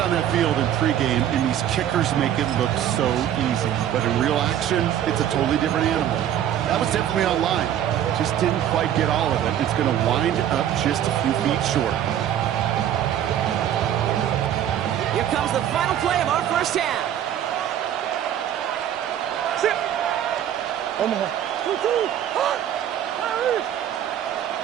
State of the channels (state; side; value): quieter; left; 10.6 dB